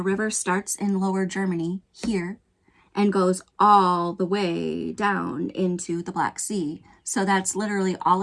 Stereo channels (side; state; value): both; identical; correlation 1.00